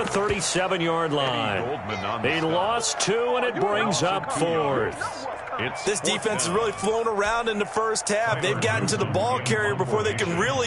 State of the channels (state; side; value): identical; both; correlation 1.00